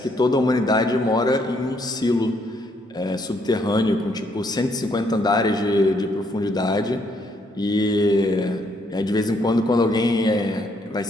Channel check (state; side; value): normal; both; correlation 0.71